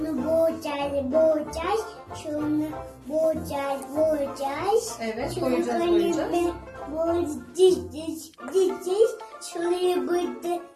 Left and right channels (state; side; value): identical; both; correlation 1.00